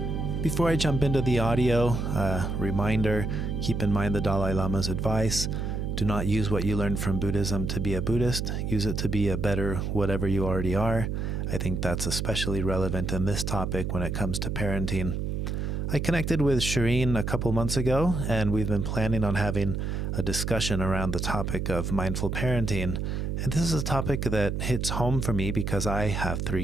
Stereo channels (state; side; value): noise; right; hum, 2 dB below the sound